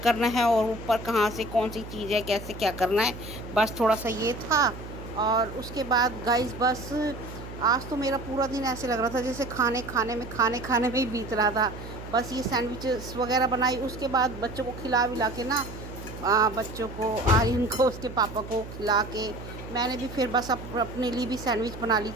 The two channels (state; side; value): noise; right; hum, 12 dB below the sound